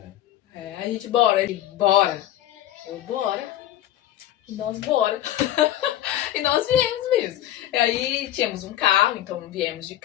É, a gente, bora. Ele, bora. Eu, bora. E nós, bora. E nós viemos mesmo. E aí tínhamos um carro, então viemos de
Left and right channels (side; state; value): right; quieter; 13.1 dB